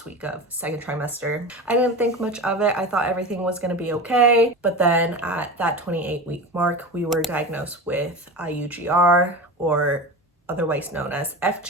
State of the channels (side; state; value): both; normal; correlation 0.28